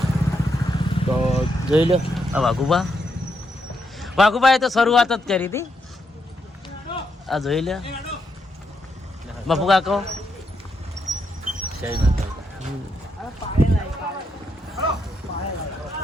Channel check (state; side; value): normal; both; correlation 0.80